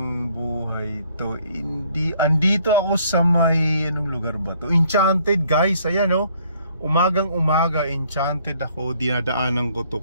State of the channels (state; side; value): inverted; both; correlation -0.63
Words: buhay to. Andito ako sa may, anong lugar ba to? Enchanted guys, ayan oh. Umagang umaga, Enchanted ako, dinadaanan ko to